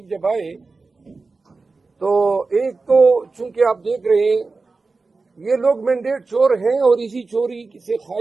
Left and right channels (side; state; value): left; quieter; 3.9 dB